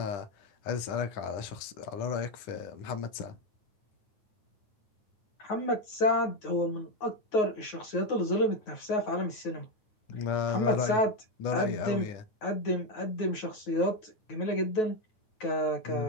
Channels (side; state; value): right; late; 9.4 ms